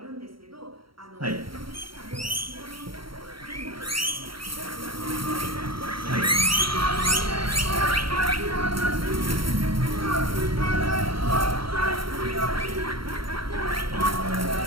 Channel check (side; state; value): left; late; 0.74 ms